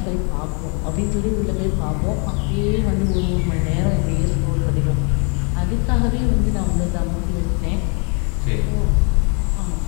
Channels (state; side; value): quieter; right; 36.3 dB